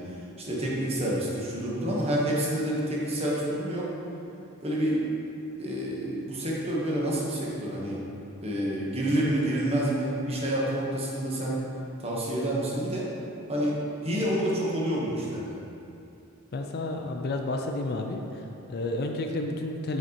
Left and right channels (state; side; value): normal; both; correlation 0.51